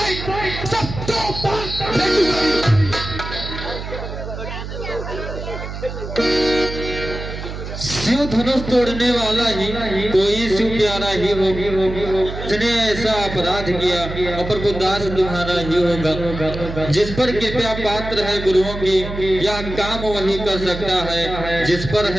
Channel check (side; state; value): right; noise; hum, 8 dB below the sound